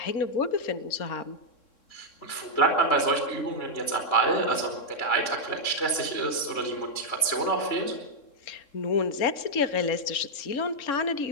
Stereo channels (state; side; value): late; right; 3.7 ms